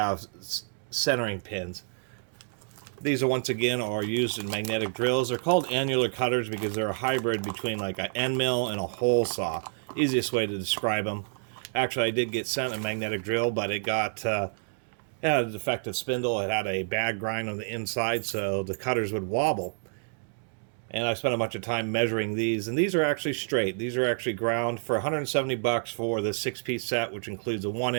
centering pins. These are once again are used in magnetic drills. They're called annular cutters because they're a hybrid between like an end mill and a hole saw. Easiest way to describe them. Actually, I did get sent a magnetic drill, but it got it had a defective spindle. It had a bad grind on the inside, so the cutters would wobble. And I spent a bunch of time measuring these, and these are actually straight. These are actually ground for 170 bucks for the 6-piece set, which includes a 1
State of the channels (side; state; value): left; silent; digital silence